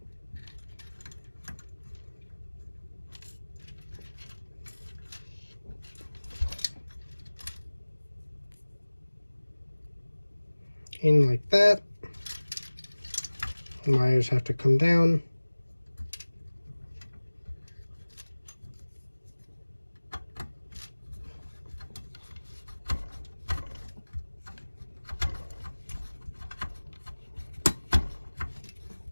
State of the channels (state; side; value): inverted; both; correlation -1.00